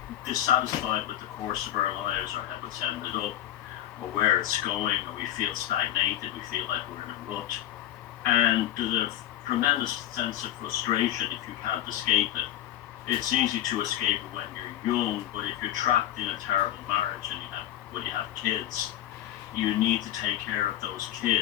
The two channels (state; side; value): quieter; right; 12.7 dB